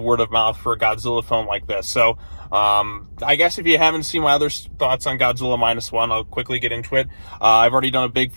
word of mouth for a Godzilla film like this. So I guess if you haven't seen my other thoughts on Godzilla Minus One, I'll quickly get into it. I've already done a big,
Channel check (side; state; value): both; inverted; correlation -1.00